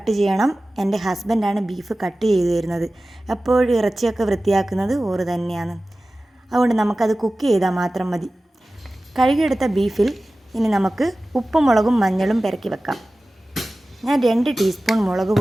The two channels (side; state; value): both; normal; correlation 0.96